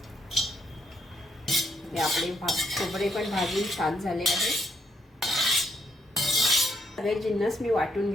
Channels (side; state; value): both; normal; correlation 0.74